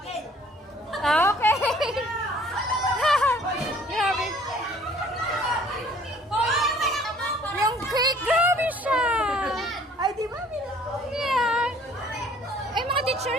Okay. Grabe. Yung cake, grabe siya. Ay, di ba? Yeah. Ay, mga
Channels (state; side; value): normal; both; correlation 0.56